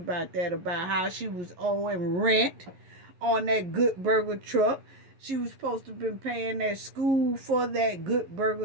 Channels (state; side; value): late; left; 11 ms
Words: that, about how she was owing rent on that Good Burger truck. She was supposed to have been paying that school for that Good